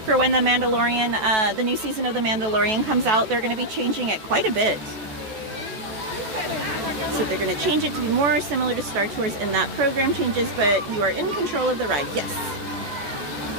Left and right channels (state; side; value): late; left; 14 ms